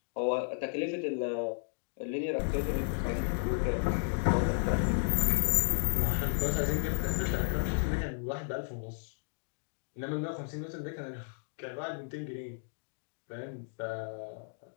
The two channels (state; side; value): silent; right; digital silence